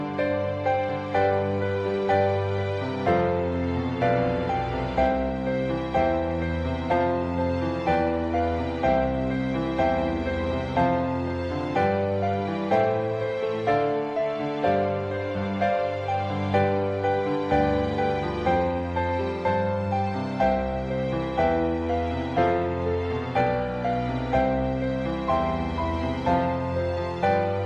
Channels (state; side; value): noise; right; rumble, 29 dB below the sound